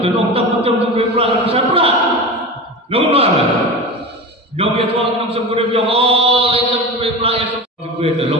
Dan orang tak macam juga berat besar berat. Namun mana? Jom dia tuan nam sebut dia oh lain juga berat ya juga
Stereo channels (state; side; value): normal; both; correlation 0.28